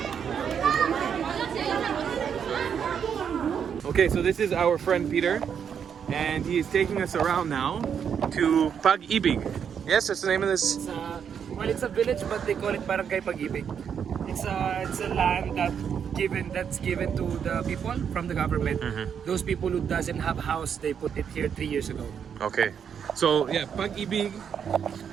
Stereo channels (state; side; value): quieter; left; 7.7 dB